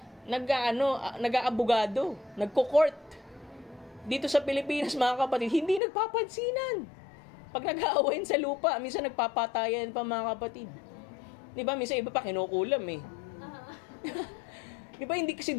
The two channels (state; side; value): drops out; right; at 5.8 s